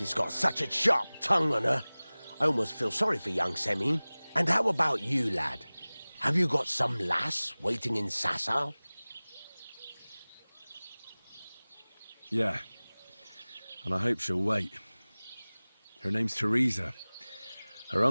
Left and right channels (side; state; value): both; inverted; correlation -1.00